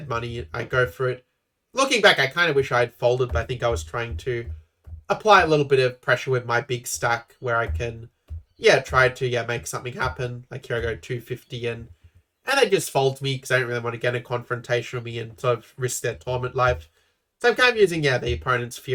money. I go for it. Looking back, I kind of wish I had folded, but I think I was trying to apply a little bit of pressure with my big stack where I can, try to, make something happen. Like here I go 250 and they just fold me because I don't really want to get a confrontation with me and sort of risk their tournament life. So I'm kind of using, the opponent's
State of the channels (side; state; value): both; identical; correlation 1.00